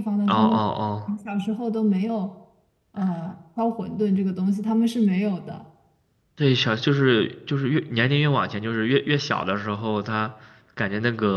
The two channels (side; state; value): both; identical; correlation 1.00